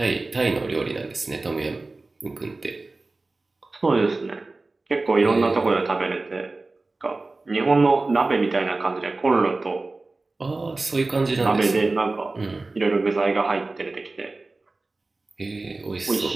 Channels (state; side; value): quieter; left; 3.4 dB